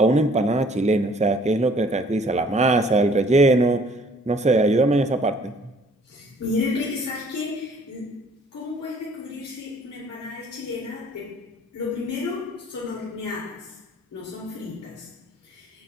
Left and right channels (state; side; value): normal; both; correlation 0.57